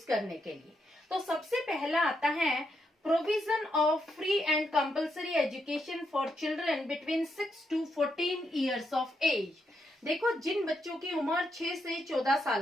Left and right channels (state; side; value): normal; both; correlation 0.80